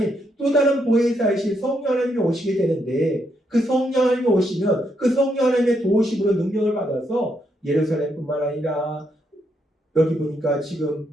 또 다른 보혜사이신 성령 하나님이 오시게 되는데 그 성령 하나님이 오시면 그 성령 하나님의 도우심으로 능력을 받아서 예루살렘뿐만 아니라 여기 보니까 지금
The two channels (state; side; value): normal; both; correlation 0.77